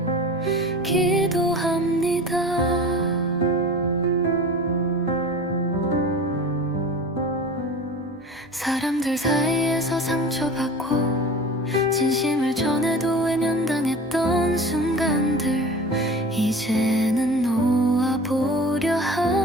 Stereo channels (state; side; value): normal; both; correlation 0.37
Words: 기도합니다. 사람들 사이에서 상처받고 진심을 전해도 외면당했던 순간들 이제는 놓아보려